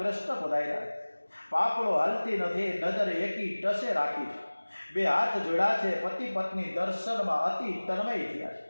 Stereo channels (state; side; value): inverted; both; correlation -1.00